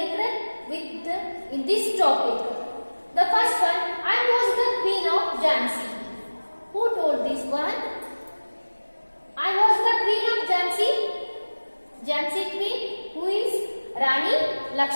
with in this topic. The first one, I was the Queen of Jhansi. Who told this one? I was the Queen of Jhansi. Jhansi Queen, who is Rani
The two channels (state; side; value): inverted; both; correlation -1.00